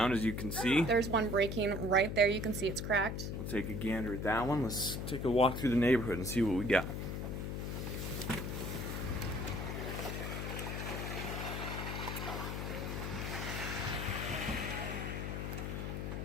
as you can see. There's one breaking right there. You can see it's cracked. We'll take a gander at that one. Let's take a walk through the neighborhood and see what we got.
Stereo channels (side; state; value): left; noise; hum, 3 dB below the sound